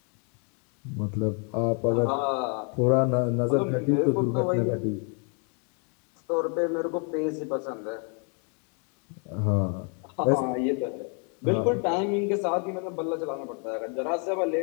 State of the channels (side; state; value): right; quieter; 38.9 dB